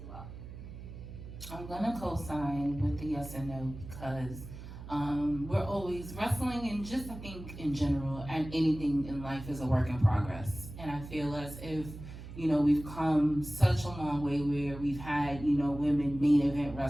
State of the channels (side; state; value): right; noise; hum, 12 dB below the sound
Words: well. I'm gonna co-sign with the yes and no, because we're always wrestling, and just I think in general, and anything in life is a work in progress. And I feel as if, we've come such a long way where we've had, women main event